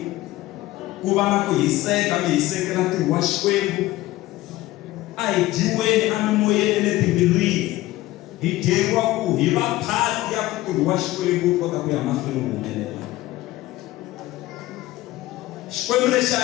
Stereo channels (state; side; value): quieter; right; 17.0 dB